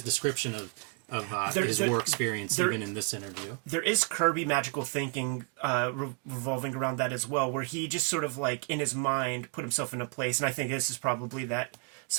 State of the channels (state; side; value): quieter; left; 30.9 dB